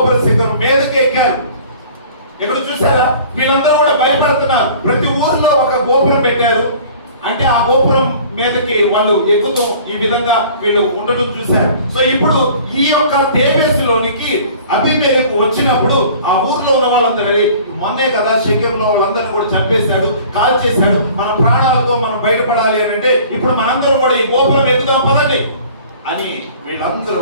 శిఖరం మీదకి ఎక్కారు. ఇక్కడ చూసారా, వీళ్ళందరూ కూడా భయపడుతున్నారు. ప్రతి ఊరిలో ఒక గోపురం పెట్టారు. అంటే ఆ గోపురం మీదకి వాళ్ళు ఎక్కుతూ ఈ విధంగా వీళ్ళు ఉండటం చూశారు. సో ఇప్పుడు ఈ యొక్క తేబేసులోనికి అబీమెలెకు వచ్చినప్పుడు ఆ ఊర్లో ఉన్న వాళ్ళందరూ, మొన్నే కదా షెకెంలో వాళ్ళందరినీ కూడా చంపేశాడు, కాల్ చేశాడు, మన ప్రాణాలతో మనం బయటపడాలి అని అంటే ఇప్పుడు మనందరూ కూడా ఈ గోపురం ఎక్కుదాం పదండి అని వీళ్ళందరూ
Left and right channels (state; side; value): inverted; both; correlation -0.48